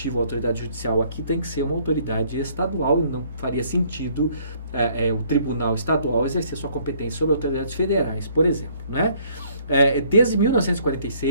a autoridade judicial aqui tem que ser uma autoridade estadual, e não faria sentido o Tribunal Estadual exercer sua competência sobre autoridades federais, por exemplo, né? Desde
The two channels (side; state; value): both; inverted; correlation -0.62